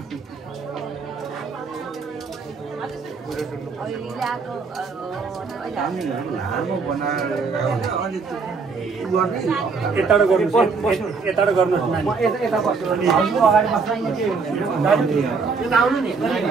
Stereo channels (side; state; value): left; quieter; 4.8 dB